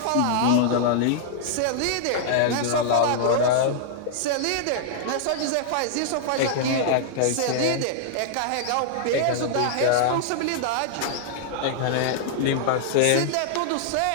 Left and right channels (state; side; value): different; both; correlation -0.01